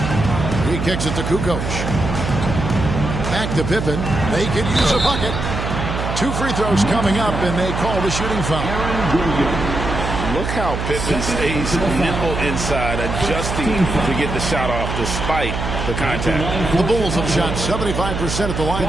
He kicks it to Kukoc. Back to Pippen. They could use a bucket. 2 free throws coming up, and they call the shooting foul. Look how Pippen stays nimble inside, adjusting to get the shot off despite the contact. The Bulls have shot 75% at the line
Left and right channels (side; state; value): right; noise; hum, 4 dB below the sound